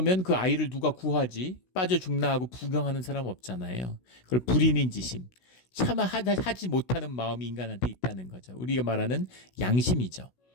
그 아이를 누가 구하지? 빠져 죽나 하고 부경하는 사람 없잖아요. 그걸 불인인지심, 차마 하지 못하는 마음이 인간한테 있다는 거죠. 우리가 말하는 양심이죠.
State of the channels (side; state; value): right; late; 16 ms